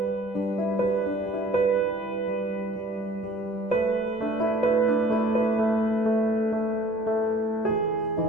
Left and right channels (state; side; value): normal; both; correlation 0.52